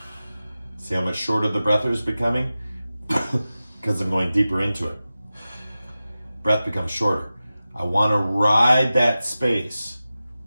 See how much shorter the breath is becoming? Because I'm going deeper into it. Breath becomes shorter. I want to ride that space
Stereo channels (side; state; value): both; inverted; correlation -0.95